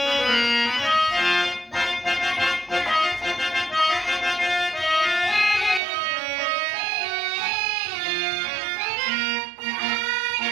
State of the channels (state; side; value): drops out; left; at 5.8 s